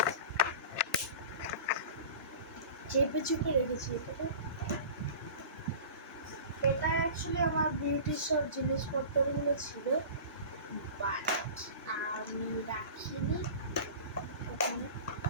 চেপে চুপে রেখেছি এটাকে। এটা অ্যাকচুয়ালি আমার বিউটির সব জিনিসপত্রগুলো ছিল, বাট আমি রাখিনি ওখানে,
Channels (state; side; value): inverted; both; correlation -0.37